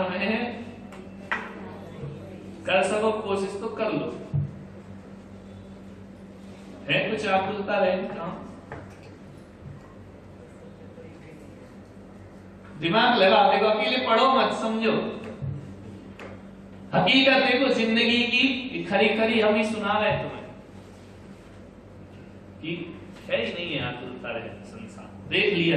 में कर सको कोशिश तो कर लो, है कुछ आकुलता रहे दिमाग लगा, देखो अकेले पढ़ो मत, समझो हकीकत देखो जिंदगी की, खरी खरी हम ही सुना रहे तुम्हें कि है ही नहीं है आकुलता रहे संसार, देख लिया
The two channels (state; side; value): identical; both; correlation 1.00